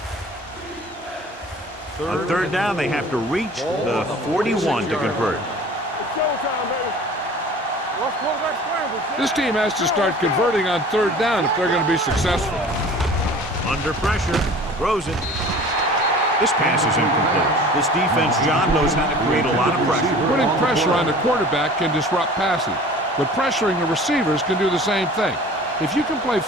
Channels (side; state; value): both; normal; correlation 0.44